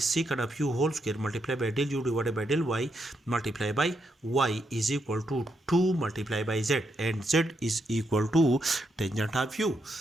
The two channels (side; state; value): both; normal; correlation 0.80